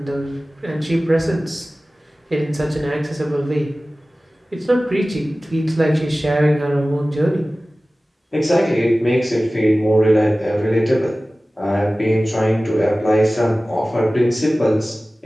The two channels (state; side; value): normal; both; correlation 0.97